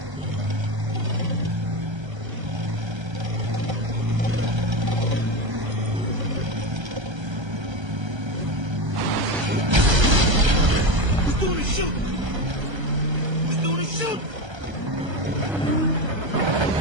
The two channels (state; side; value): late; left; 1.3 ms